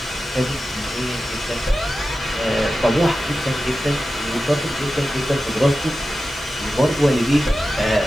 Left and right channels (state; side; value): noise; right; hiss, 28 dB below the sound